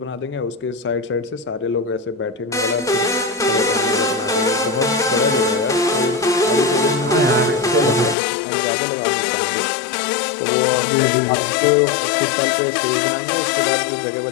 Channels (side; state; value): right; drops out; at 8.2 s